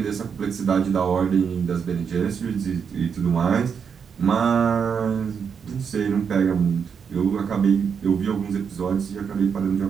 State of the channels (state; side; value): quieter; left; 6.7 dB